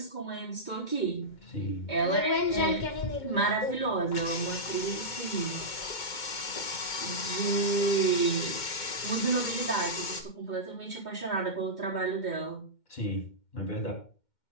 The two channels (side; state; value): right; late; 2.1 ms